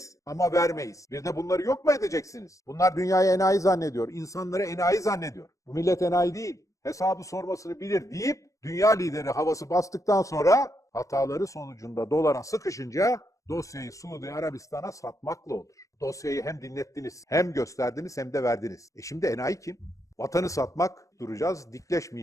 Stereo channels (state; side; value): late; right; 0.16 ms